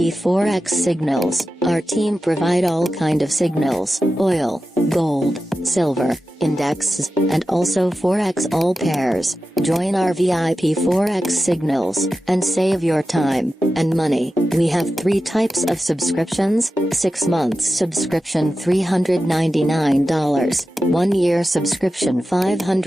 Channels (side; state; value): both; normal; correlation 0.93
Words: Forex signals. Our team provide all kind of signals, oil, gold, silver, indexes, and also Forex all pairs. Join our VIP Forex signals, and save your time and money. We have 3 types of subscriptions: 6 months subscription $399, 1 year subscription